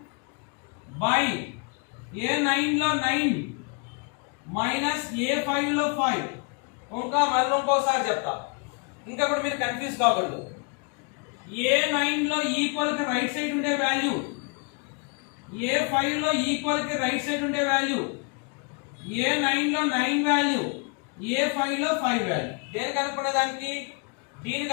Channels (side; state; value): right; quieter; 33.8 dB